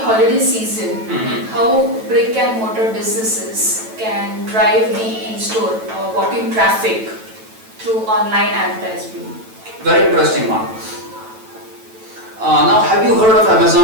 season, how brick and mortar businesses can drive the in-store walk-in traffic through online advertising? Very interesting one. Now, have you heard of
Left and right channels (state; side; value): late; left; 9.1 ms